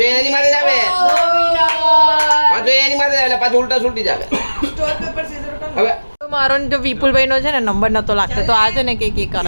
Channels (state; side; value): inverted; both; correlation -1.00